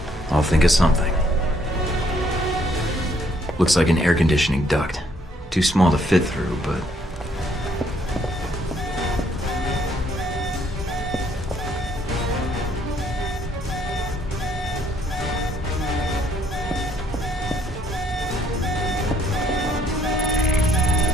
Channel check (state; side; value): normal; both; correlation 0.67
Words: I'll think of something. Looks like an air conditioning duct. Too small to fit through, but...